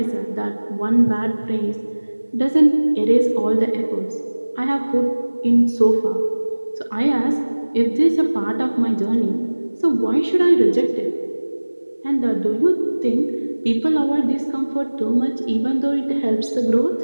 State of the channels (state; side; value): inverted; both; correlation -1.00